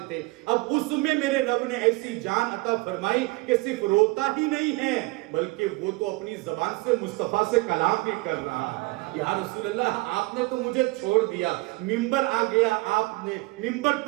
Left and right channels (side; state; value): left; quieter; 23.6 dB